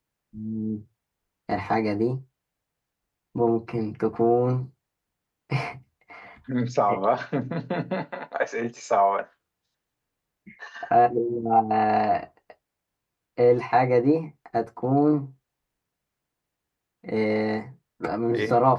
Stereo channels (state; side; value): identical; both; correlation 1.00